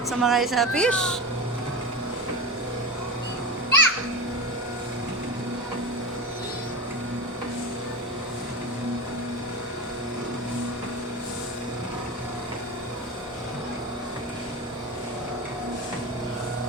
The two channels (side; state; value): both; normal; correlation 0.24